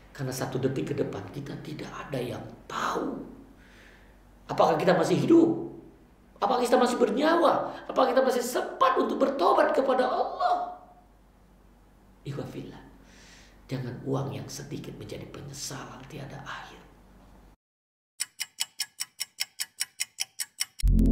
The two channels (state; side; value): identical; both; correlation 1.00